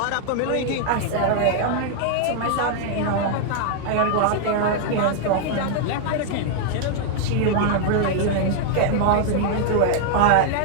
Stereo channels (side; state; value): both; different; correlation 0.00